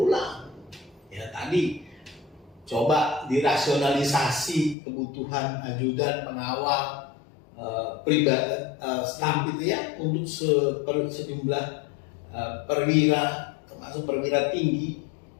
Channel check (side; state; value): right; drops out; at 4.8 s